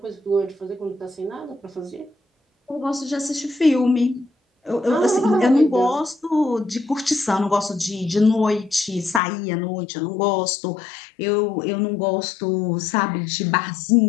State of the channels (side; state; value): right; drops out; at 9.2 s